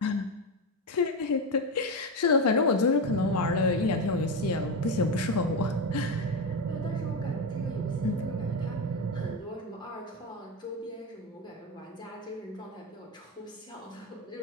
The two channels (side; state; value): both; normal; correlation 0.14